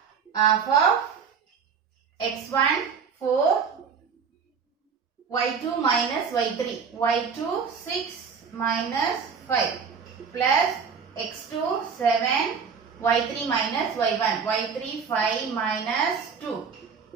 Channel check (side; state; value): left; quieter; 6.1 dB